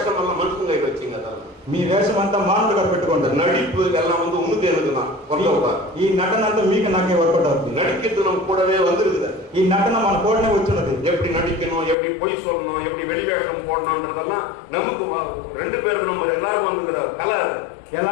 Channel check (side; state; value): right; drops out; at 12.0 s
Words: எல்லாம் மனுஷங்க வச்சீங்க. మీ వేషం అంతా మానవుడిగా పెట్టుకోండి. நடிப்பு எல்லாம் வந்து உனக்கு எனக்கு தான். ఈ నటన అంతా మీకు నాకే వర్కౌట్ అవుతుంది. நடிக்கிறது நம்ம கூடவே வந்துருக்குது. ఈ నటన మన కూడనే వచ్చినది. எப்படி நடிக்கணும், எப்படி பொய் சொல்லணும், எப்படி வெளிவேஷம் போடணும்ன்றதெல்லாம் நமக்கு 2 பேருக்கு நம்ம எல்லாரும் வந்துக்கிற கலை.